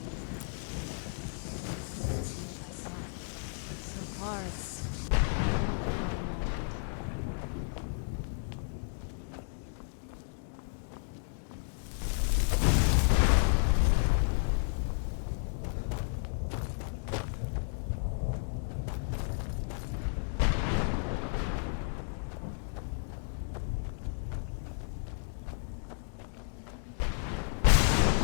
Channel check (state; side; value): silent; right; digital silence